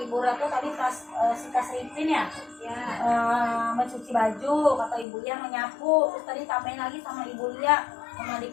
Ibu Ratu tadi Tasripin ya, mencuci baju. Kata Ibu Lia menyapu. Terus tadi tambahin lagi sama Ibu Lia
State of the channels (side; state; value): right; drops out; at 5.1 s